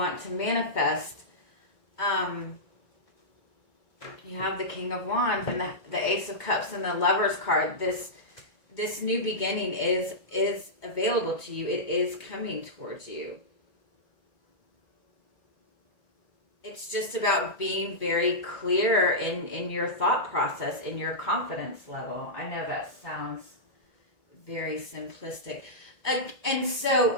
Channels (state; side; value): late; right; 2.2 ms